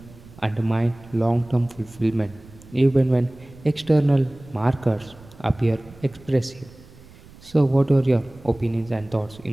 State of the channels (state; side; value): noise; right; rumble, 22 dB below the sound